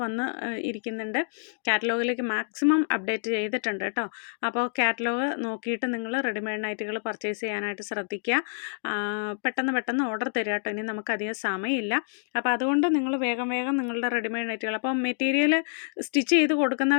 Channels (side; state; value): right; silent; 60 dB below the other